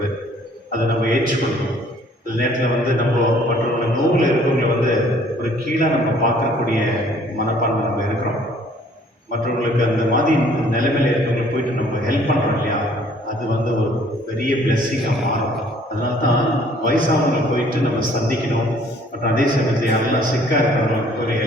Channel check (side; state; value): both; normal; correlation 0.58